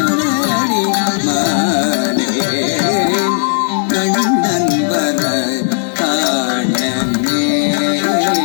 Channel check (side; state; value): right; silent; digital silence